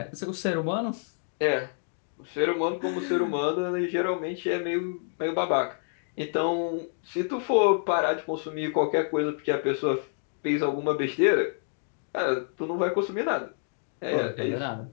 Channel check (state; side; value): silent; right; digital silence